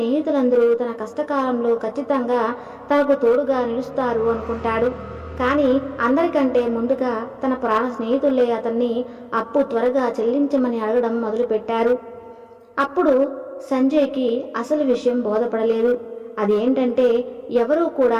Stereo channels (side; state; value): both; identical; correlation 1.00